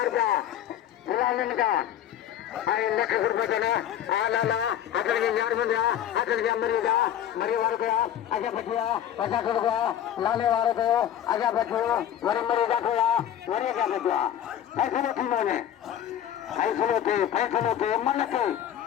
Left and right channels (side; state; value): right; quieter; 10.5 dB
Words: लक्ष रुपये यार बन गया अचल गया मरी वाले गया आजा बचिया पैसा कर गया लाने वाले को आजा बचो मरी मरी गया मरी क्या बचिया ऐसे थी मैंने फैसलों थे मन के